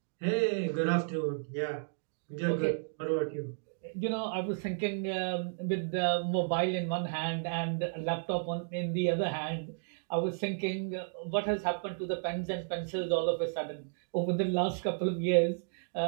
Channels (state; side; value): silent; left; digital silence